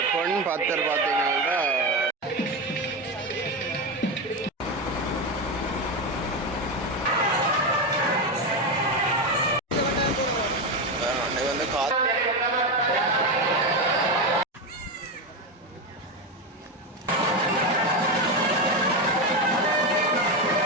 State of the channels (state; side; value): normal; both; correlation 0.14